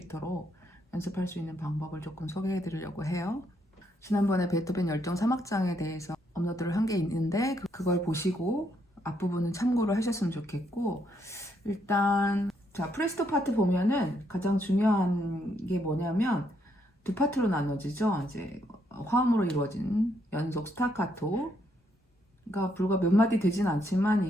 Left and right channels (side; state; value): both; normal; correlation 0.74